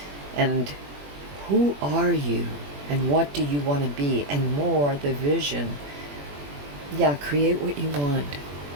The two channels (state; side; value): late; left; 21 ms